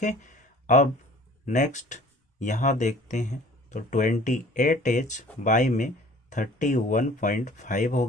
अब नेक्स्ट यहाँ देखते हैं। तो 28H बाई में 31.5 हो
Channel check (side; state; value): both; normal; correlation 0.50